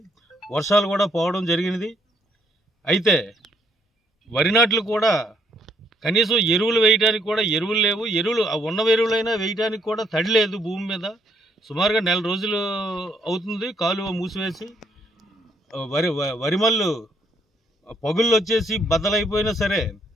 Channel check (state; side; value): normal; both; correlation 0.70